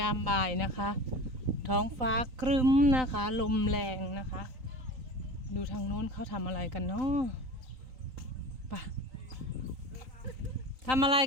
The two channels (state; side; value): late; left; 3.9 ms